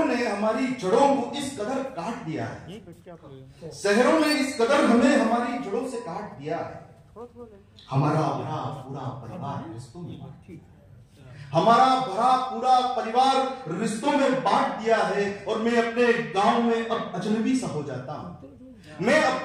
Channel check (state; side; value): identical; both; correlation 1.00